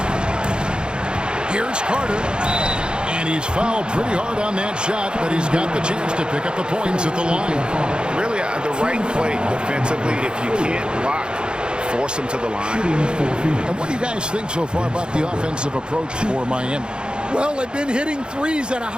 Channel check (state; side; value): late; left; 0.050 ms